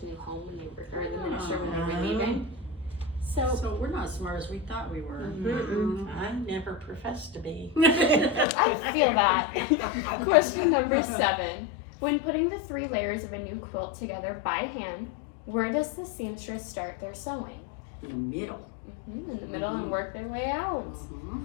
new home when they were, or the minister when they were leaving. So we're not as smart as we thought we were. I never professed to be. I feel that. Question number 7. When putting the 3 layers of a new quilt together by hand, where does the seamstress start their sewing? In the middle. In the middle and work their way out. Mm-hmm.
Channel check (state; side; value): drops out; right; at 8.5 s